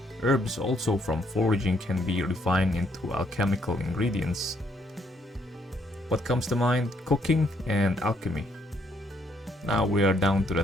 Herbs also from foraging can be refined into alchemical ingredients. What comes to mind? Cooking and alchemy. Now we are down to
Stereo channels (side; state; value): both; normal; correlation 0.71